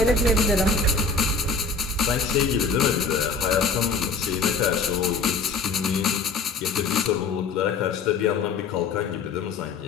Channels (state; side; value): quieter; right; 4.4 dB